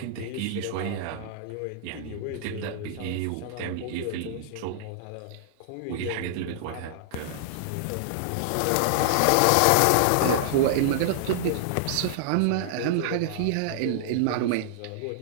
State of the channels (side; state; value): both; different; correlation -0.01